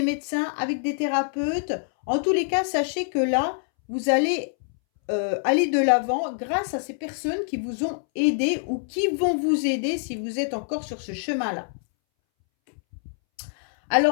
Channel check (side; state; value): right; silent; 62 dB below the other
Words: médecins, avec des thérapeutes. En tous les cas, sachez que là, vous allez aller de l'avant grâce à ces personnes qui vous ont aidé ou qui vont vous aider si vous êtes encore sur ce chemin-là.